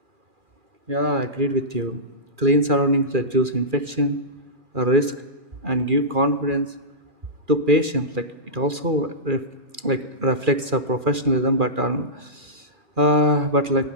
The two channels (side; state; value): left; late; 2.4 ms